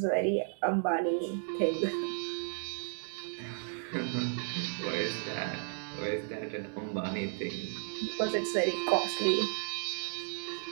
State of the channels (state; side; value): silent; left; 55 dB below the other